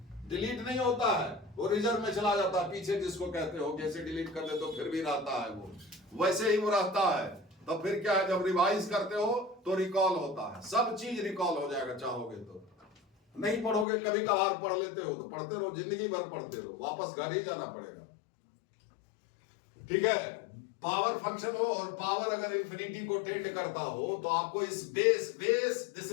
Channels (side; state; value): right; drops out; at 13.9 s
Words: नहीं होता है, वो रिजर्व में चला जाता है पीछे, जिसको कहते हो, जैसे डिलीट कर दे तो फिर भी रहता है, वो वैसे ही वो रहता है। तो फिर क्या है, जब रिवाइज करते हो तो रिकॉल होता है, सब चीज रिकॉल हो जाएगा, चाहोगे तो। नहीं पढ़ोगे, कभी कभार पढ़ लेते हो तो पढ़ते रहो, जिंदगी भर पढ़ते रहो, वापस घर ही जाना पड़ेगा, ठीक है। पावर फंक्शन हो और पावर अगर इंफिनिटी को टेंड करता हो तो आपको इस base this